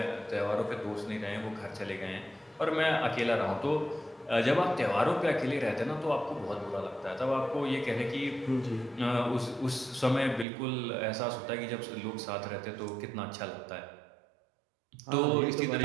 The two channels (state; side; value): drops out; left; at 10.5 s